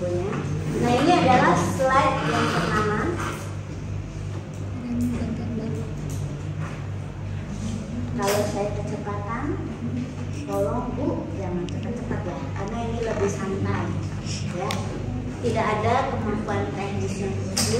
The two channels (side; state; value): both; identical; correlation 1.00